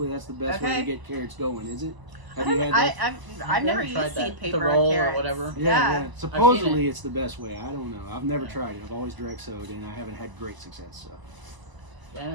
that's the best way Okay. to get carrots going. Is it? Have you had that? I've never tried used that. seed The paper roll on or carrots. whatever? Yeah. I've Supposedly seen it's the best way. I don't know. I've never Yeah. tried it. I've always direct sowed, and I haven't had great success. So. yeah,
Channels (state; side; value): late; left; 1.0 ms